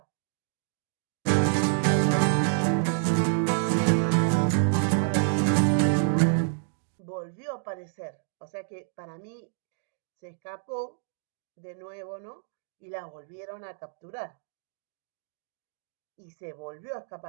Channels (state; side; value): silent; left; digital silence